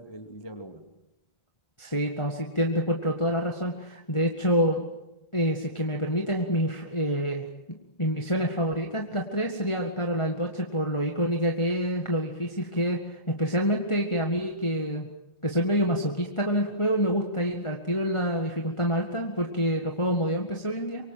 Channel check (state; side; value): late; right; 1.4 ms